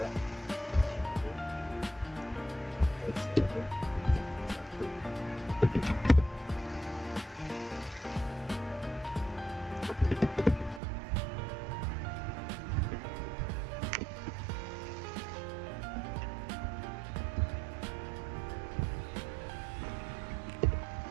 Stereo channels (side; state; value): left; drops out; at 10.8 s